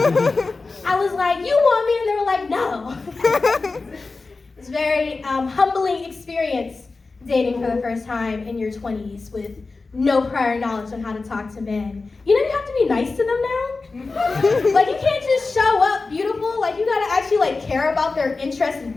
I was like, you want me? And they were like, no. It's a very humbling experience dating for the first time in your 20s with no prior knowledge on how to talk to men. You know, you have to be nice to them now. Like, you can't just show up beautiful. Like, you gotta actually like care about their interests and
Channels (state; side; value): quieter; right; 3.8 dB